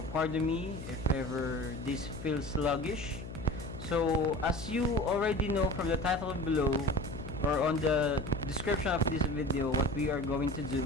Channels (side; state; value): left; noise; hum, 11 dB below the sound